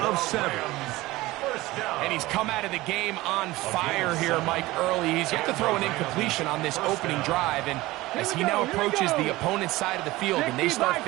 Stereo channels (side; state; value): left; quieter; 19.0 dB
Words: of 7. And he's come out of the game on fire here, Mike, early. He's yet to throw an incompletion on this opening drive, and as he now approaches the opponent's side of the field and they start